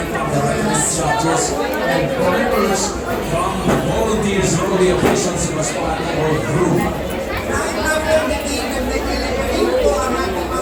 from the resident judges and drivers from volunteers, road officials who was part of our group.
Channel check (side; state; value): both; identical; correlation 1.00